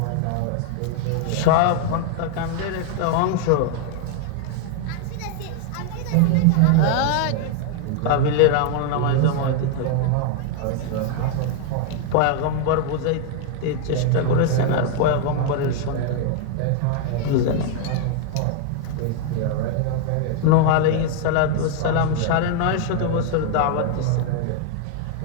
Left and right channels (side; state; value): both; different; correlation 0.00